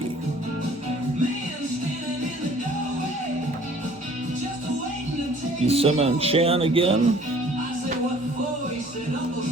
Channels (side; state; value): both; normal; correlation 0.53